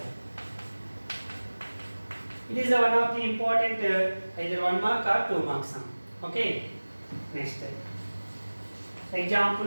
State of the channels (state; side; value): inverted; both; correlation -1.00